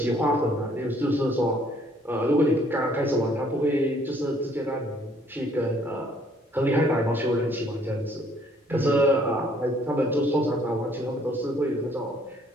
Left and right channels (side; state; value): both; normal; correlation 0.63